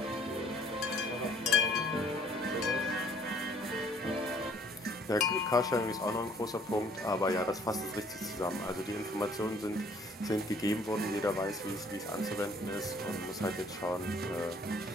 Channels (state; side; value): normal; both; correlation 0.59